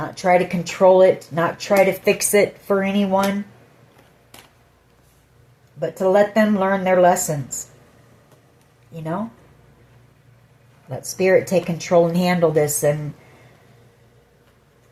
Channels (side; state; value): both; identical; correlation 1.00